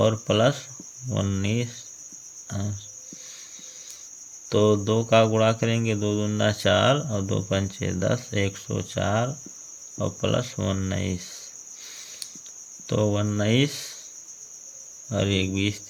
प्लस 19 अंश, तो 2 का गुणा करेंगे, 2 दूना 4 और 2 पंचे 10, 104 और प्लस 19, तो 19 और 1 20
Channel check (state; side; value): identical; both; correlation 1.00